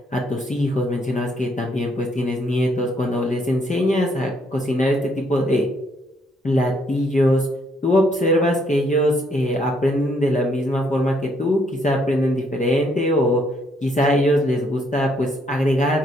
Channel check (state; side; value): normal; both; correlation 0.70